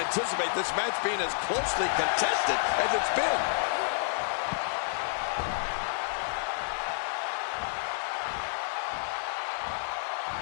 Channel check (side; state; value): right; silent; 58 dB below the other